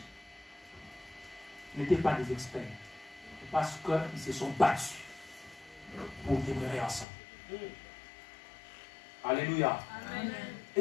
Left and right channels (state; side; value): drops out; right; at 7.1 s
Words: n'étaient pas des experts. Parce qu'ils se sont battus pour demeurer ensemble. Alléluia. Amen.